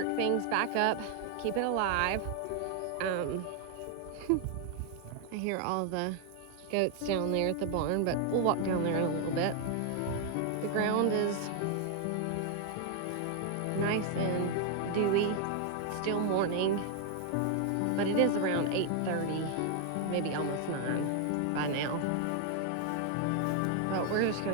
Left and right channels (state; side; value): different; both; correlation 0.00